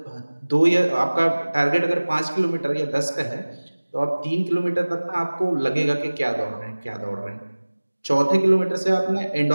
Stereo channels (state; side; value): inverted; both; correlation -1.00